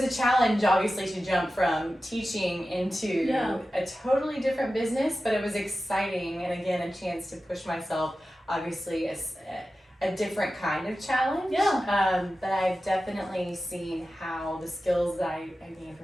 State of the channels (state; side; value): normal; both; correlation 0.94